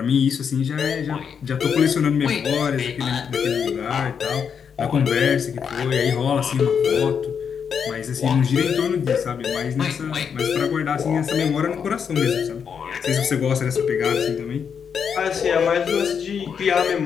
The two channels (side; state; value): right; quieter; 7.0 dB